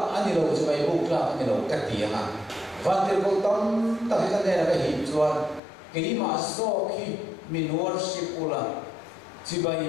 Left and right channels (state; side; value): drops out; right; at 5.6 s